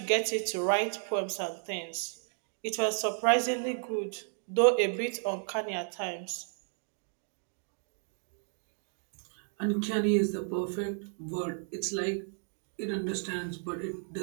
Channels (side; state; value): left; silent; 56 dB below the other